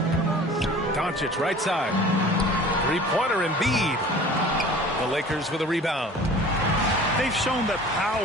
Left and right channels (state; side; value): normal; both; correlation 0.44